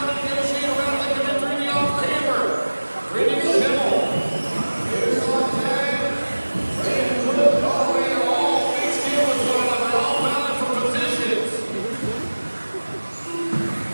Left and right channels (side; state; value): both; inverted; correlation -1.00